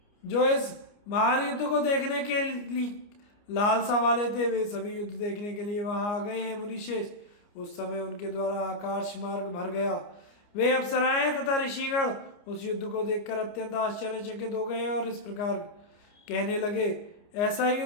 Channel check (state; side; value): late; right; 29 ms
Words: जो इस महान युद्ध को देखने के लिए लालसा वाले थे, वे सभी युद्ध देखने के लिए वहां आ गए हैं। मुनिश्रेष्ठ, उस समय उनके द्वारा आकाश मार्ग भर गया। वे अप्सराएं तथा ऋषिगण उस युद्ध को देखकर अत्यंत आश्चर्यचकित हो गए और इस प्रकार कहने लगे, ऐसा